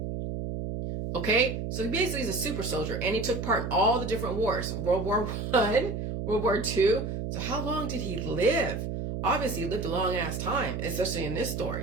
Okay, so he basically is a super soldier, and he took part in all the different wars. World War I, World War II. So how long did he live? Obviously, he lived a long-ass time, especially in this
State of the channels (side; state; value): right; noise; hum, 4 dB below the sound